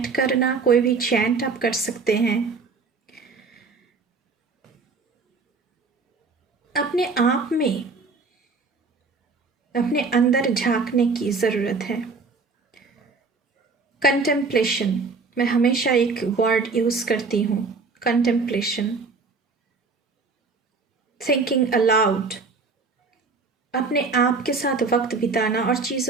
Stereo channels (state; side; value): quieter; left; 4.4 dB